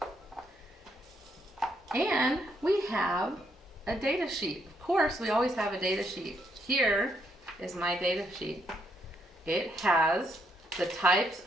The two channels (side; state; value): both; normal; correlation 0.75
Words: And we have a data sheet. Of course, we always have a data sheet. Here is my data sheet. It has the types